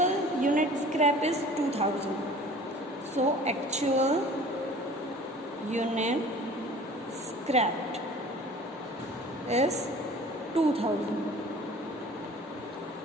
unit scrap is 2,000. So actual unit scrapped is 2,000.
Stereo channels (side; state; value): both; normal; correlation 0.45